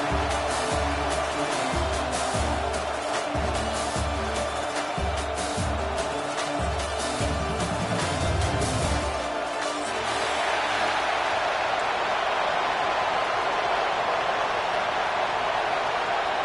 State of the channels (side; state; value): both; identical; correlation 1.00